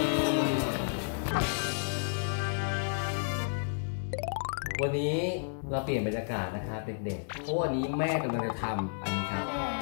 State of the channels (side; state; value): right; silent; digital silence